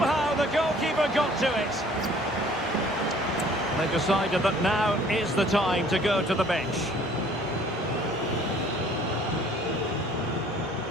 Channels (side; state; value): both; normal; correlation 0.55